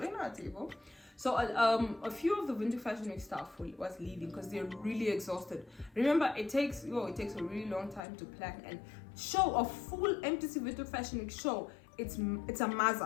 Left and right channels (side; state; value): right; drops out; at 8.0 s